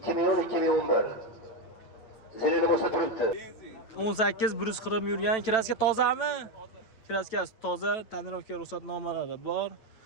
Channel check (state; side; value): late; right; 9.1 ms